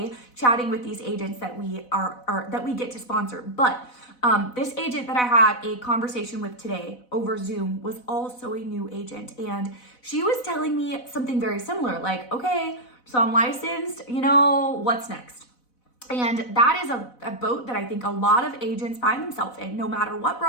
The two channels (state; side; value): late; right; 4.0 ms